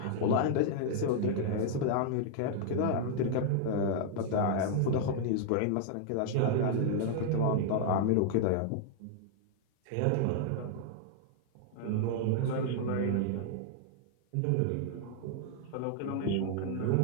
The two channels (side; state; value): both; different; correlation -0.01